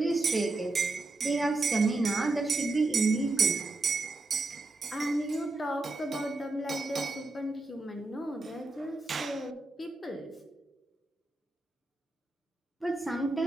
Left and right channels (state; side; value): quieter; left; 3.0 dB